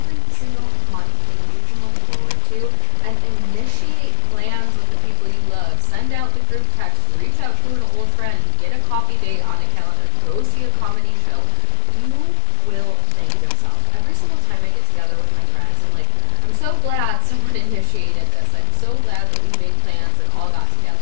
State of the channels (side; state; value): both; different; correlation 0.00